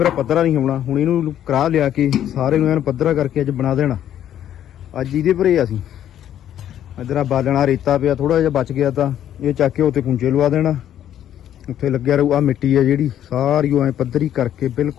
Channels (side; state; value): right; quieter; 10.9 dB